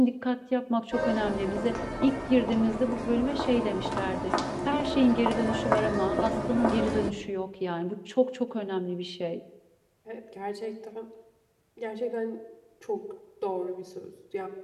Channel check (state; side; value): identical; both; correlation 1.00